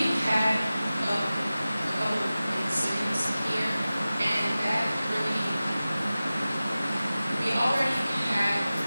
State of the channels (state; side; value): inverted; both; correlation -0.96